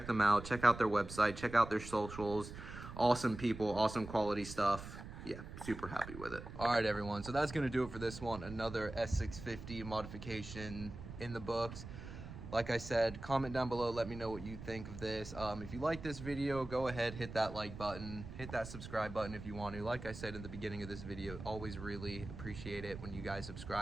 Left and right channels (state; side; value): noise; right; rumble, 11 dB below the sound